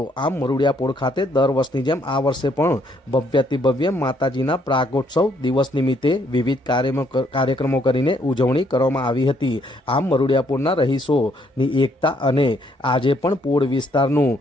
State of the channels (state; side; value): normal; both; correlation 0.69